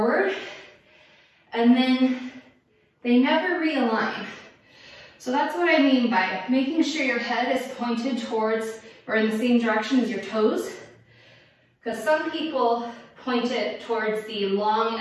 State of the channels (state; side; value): identical; both; correlation 1.00